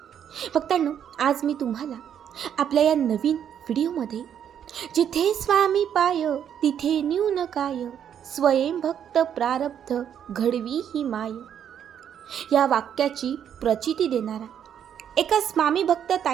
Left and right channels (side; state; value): left; quieter; 9.0 dB